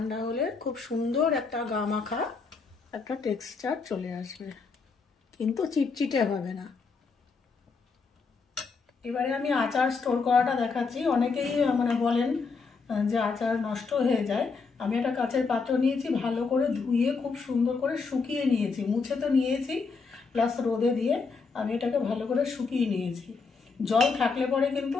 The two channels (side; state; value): right; quieter; 4.7 dB